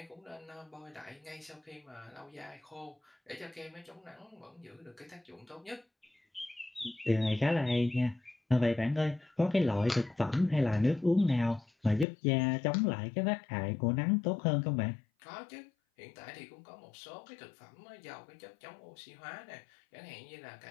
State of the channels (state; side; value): drops out; right; at 12.1 s